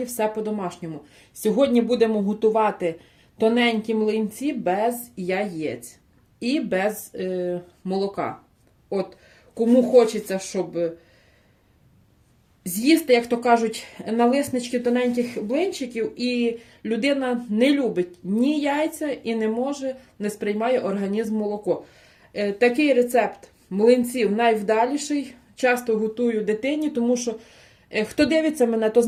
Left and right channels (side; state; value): both; identical; correlation 1.00